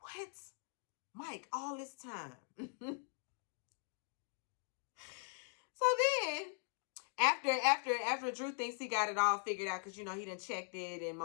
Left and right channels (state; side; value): silent; right; 51 dB below the other